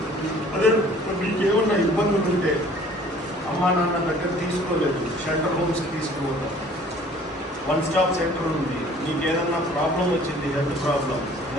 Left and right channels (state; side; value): normal; both; correlation 0.52